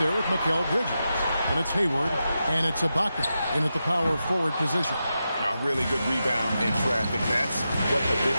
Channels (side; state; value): both; inverted; correlation -0.89